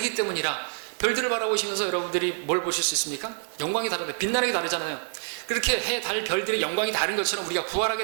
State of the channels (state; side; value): silent; left; 60 dB below the other